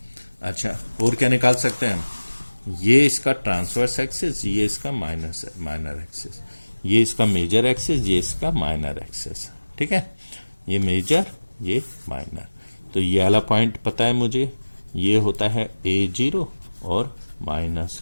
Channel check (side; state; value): both; inverted; correlation -1.00